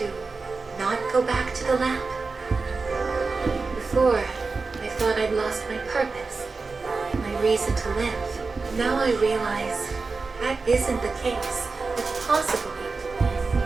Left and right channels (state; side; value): quieter; left; 4.2 dB